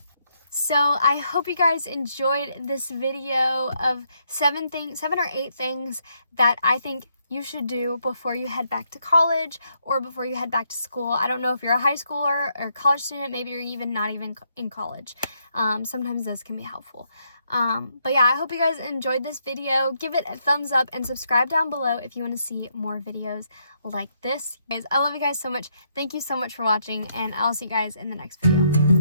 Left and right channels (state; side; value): inverted; both; correlation -0.75